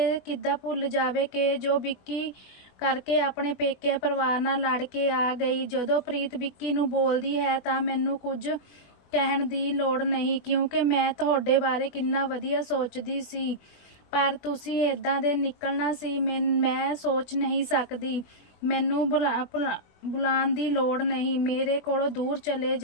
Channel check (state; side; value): late; right; 20 ms